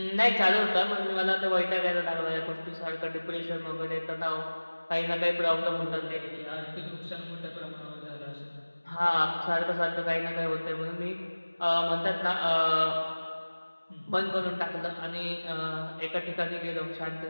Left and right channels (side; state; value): both; inverted; correlation -1.00